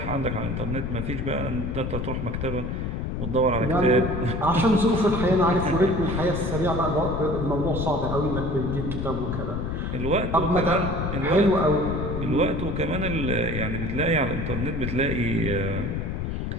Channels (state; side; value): noise; left; rumble, 3 dB below the sound